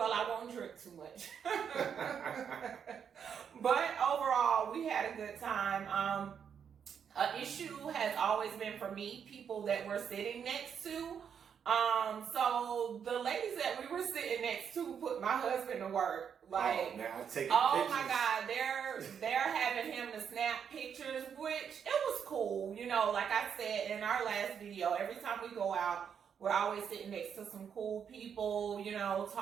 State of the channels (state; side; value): quieter; left; 7.6 dB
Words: I won't drink too much. But overall, we had a good time. An issue has always been for me, people that we're sitting next to. So the ladies that we were sitting next to put my husband to work. Like, oh my God, they're having him to snap pictures, which it was cool. You know, like I said in our last video, every time we go out, we're always sitting next to some cool people, you know,